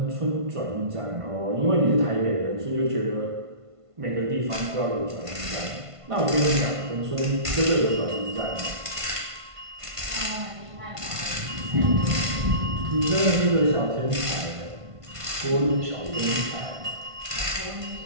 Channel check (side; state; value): left; late; 1.5 ms